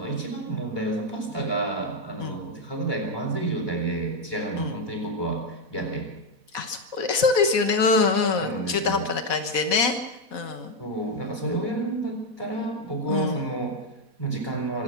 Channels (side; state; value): left; late; 4.1 ms